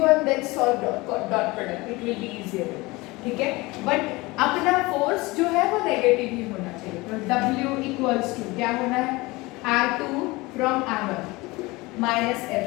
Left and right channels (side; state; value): right; quieter; 22.3 dB